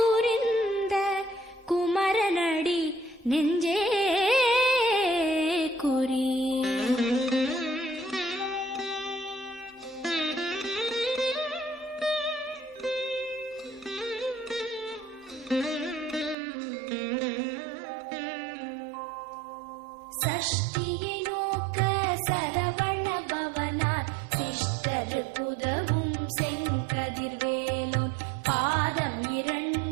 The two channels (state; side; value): drops out; left; at 16.4 s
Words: குமரனடி நெஞ்சே குறி. சஷ்டியை நோக்க சரவண பவனார் சிஷ்டரு குதவும் செங்கதிர்வேலோன், பாதம்